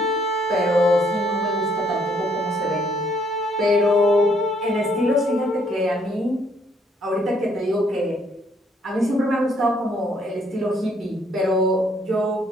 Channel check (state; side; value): normal; both; correlation 0.68